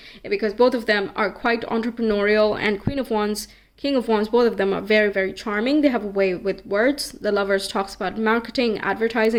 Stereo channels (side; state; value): both; identical; correlation 1.00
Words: because both of them are quite entrepreneurial. And Queen of Wands, King of Wands, both of them are very, very charming. They have a way with words. The Lovers talks about marketing,